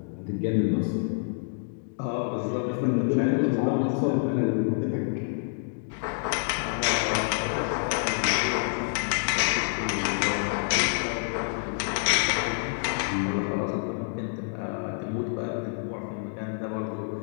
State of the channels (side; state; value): right; silent; digital silence